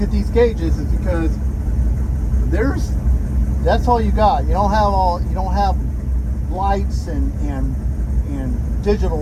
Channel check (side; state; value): both; identical; correlation 1.00